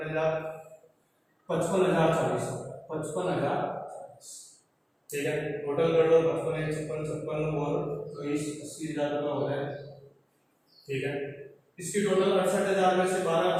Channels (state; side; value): identical; both; correlation 1.00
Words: 55,040 55,000। ठीक है, टोटल कर लो 55 56 और 80,000 रुपये हो रहे हैं। ठीक है, इसकी टोटल 68,000 में से 12